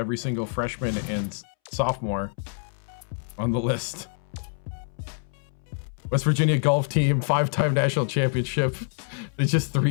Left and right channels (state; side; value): silent; right; 61 dB below the other